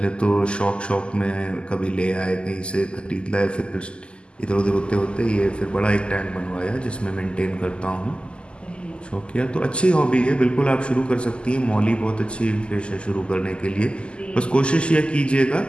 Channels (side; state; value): right; late; 0.051 ms